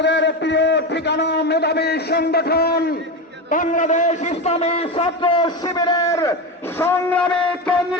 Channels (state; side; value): normal; both; correlation 0.19